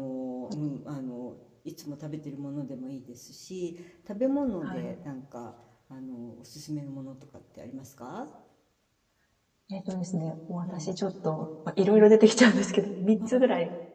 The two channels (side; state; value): both; identical; correlation 1.00